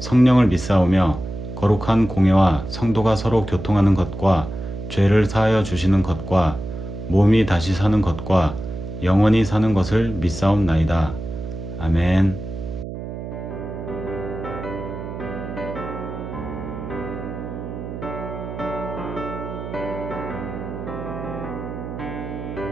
성령을 믿사오며 거룩한 공예와 성도가 서로 교통하는 것과 죄를 사하여 주시는 것과 몸이 다시 사는 것과 영원히 사는 것을 믿사옵나이다. 아멘.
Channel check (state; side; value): noise; right; hum, 8 dB below the sound